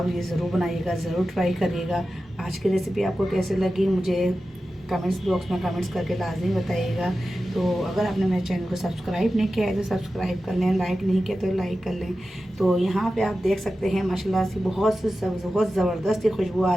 ये ज़रूर बनाइएगा, ज़रूर ट्राई करिएगा। आज की रेसिपी आपको कैसे लगी मुझे कमेंट्स बॉक्स में कमेंट्स करके लाजमी बताइएगा। तो अगर आपने मेरे चैनल को सब्सक्राइब नहीं किया है तो सब्सक्राइब कर लें, लाइक नहीं किया तो लाइक कर लें। तो यहाँ पे आप देख सकते हैं माशाल्लाह से बहुत ज़बरदस्त खुशबू आ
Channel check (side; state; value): both; normal; correlation 0.93